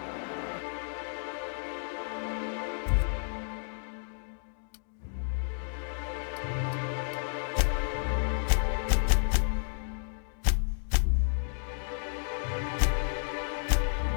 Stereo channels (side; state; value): right; silent; digital silence